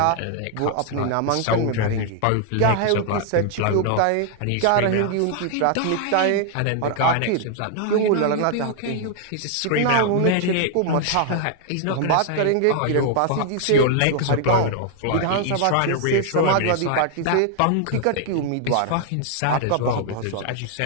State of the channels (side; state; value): both; different; correlation 0.00